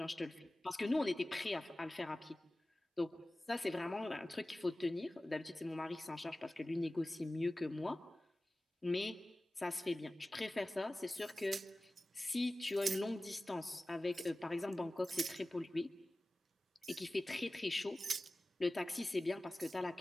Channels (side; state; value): both; normal; correlation 0.96